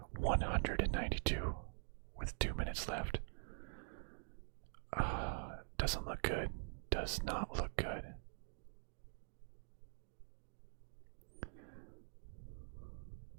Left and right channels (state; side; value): silent; left; digital silence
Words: 192 with 2 minutes left. Doesn't look good. Does not look good.